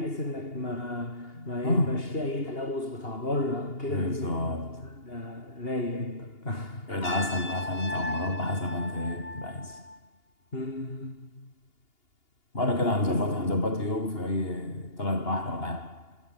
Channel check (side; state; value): right; late; 2.8 ms